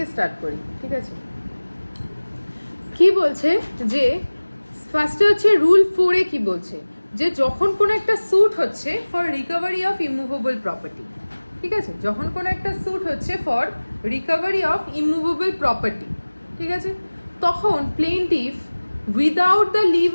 start করি, ঠিক আছে? কি বলছে যে ফার্স্টে হচ্ছে রুল 4 কি বলছে যে যখন কোনো একটা স্যুট হচ্ছে for recovery of immovable property, ঠিক আছে? যখন কোনো একটা স্যুট হচ্ছে for recovery of immovable property, ঠিক আছে, তখন plaintiff without the leave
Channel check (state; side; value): inverted; both; correlation -1.00